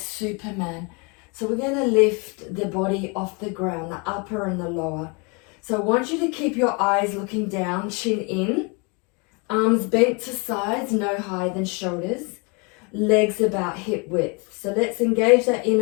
So we're going to lift the body off the ground, the upper and the lower. So I want you to keep your eyes looking down, chin in, arms bent to sides, no higher than shoulders, legs about hip width. So let's engage that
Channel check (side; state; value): right; quieter; 31.6 dB